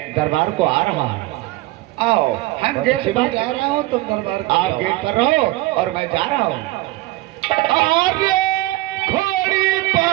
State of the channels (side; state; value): left; quieter; 18.8 dB